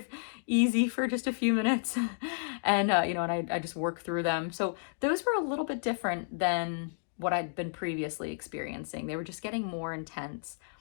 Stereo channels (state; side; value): silent; right; digital silence